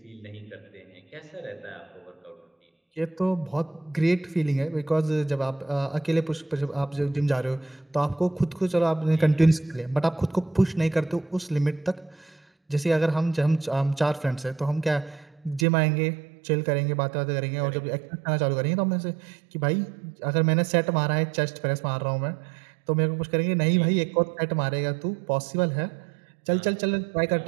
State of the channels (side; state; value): left; drops out; at 15.7 s